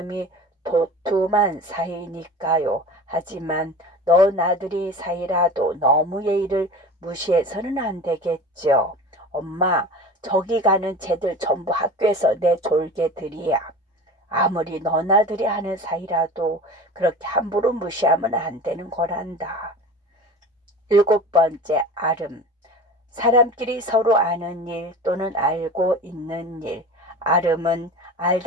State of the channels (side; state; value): both; normal; correlation 0.35